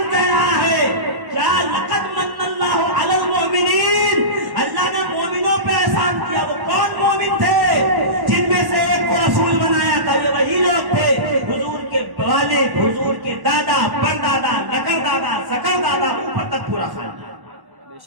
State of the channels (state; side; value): late; left; 1.1 ms